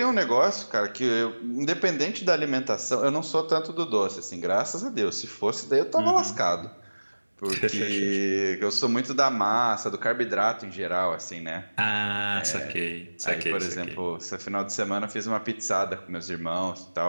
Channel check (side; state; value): both; inverted; correlation -1.00